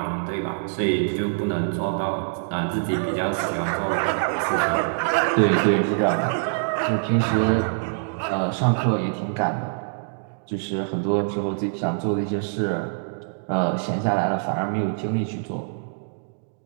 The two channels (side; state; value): left; silent; digital silence